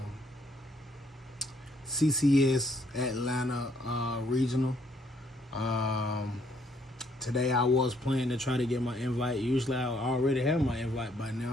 CCS Atlanta regional. Um, Today I was planning to try to get my invite. Usually I already have my invite by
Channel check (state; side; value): normal; both; correlation 0.68